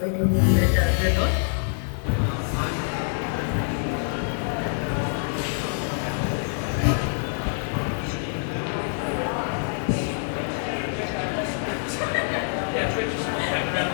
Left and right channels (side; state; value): right; silent; 58 dB below the other